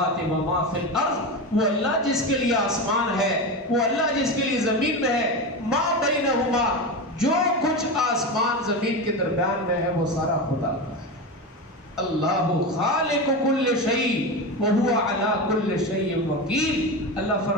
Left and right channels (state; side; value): normal; both; correlation 0.20